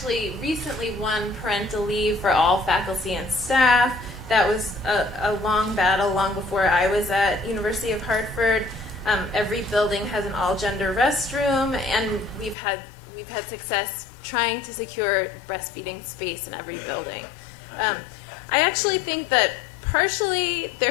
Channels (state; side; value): drops out; right; at 12.6 s